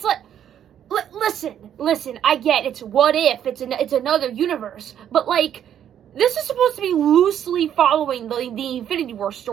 like, listen, I get it's what if, it's another universe, but like, this is supposed to be loosely following the Infinity War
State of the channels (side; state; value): left; quieter; 9.8 dB